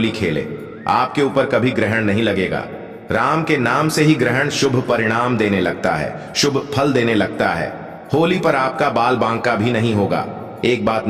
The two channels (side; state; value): both; identical; correlation 1.00